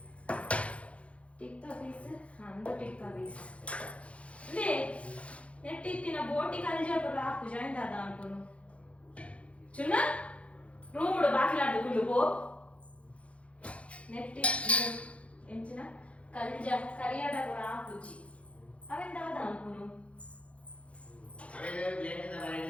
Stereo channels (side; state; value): right; late; 0.062 ms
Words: ಟಿಕ್ಕ ಪೀಸ್ ಅಂದು ಟಿಕ್ಕ ಪೀಸ್ ಲೇ ನೆಟ್ಟಿತ್ತಿನ ಬೋಟಿ ಕಲ್ಜಪುರ ಹಾಕು ಜಾಯಿನ್ ದಾದ ಅನ್ಕೊನು ಚುನ್ನ ರೂಮ್ ಬಾಕಿಲಾಡು ಗುಳ್ಳು ಪೋ ನೆಟ್ಟಿ ಎಂಚಿನ ಕಲ್ಜ ಕರಿಯಾಡ ಕೂಡ ಹಾಕುಚಿ ಅವೆಂತ ದಾದ ಅನ್ಕೊನು